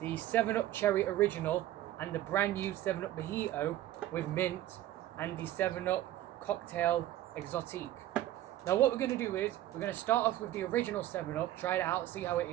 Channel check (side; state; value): left; quieter; 13.9 dB